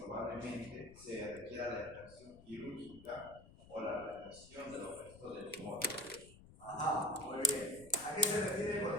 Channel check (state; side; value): noise; left; rumble, 20 dB below the sound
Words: se requiera la extracción quirúrgica o la retención de los restos del tumor. Ajá, muy bien. ¿A qué se refiere